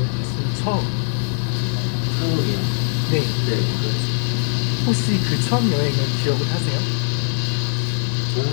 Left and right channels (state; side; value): silent; right; 57 dB below the other